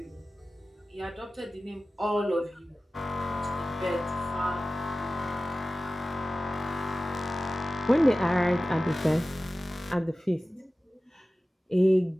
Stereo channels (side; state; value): both; normal; correlation 0.96